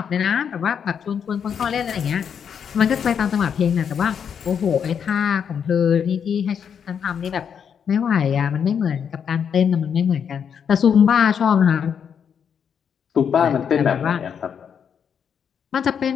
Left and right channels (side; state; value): right; quieter; 7.5 dB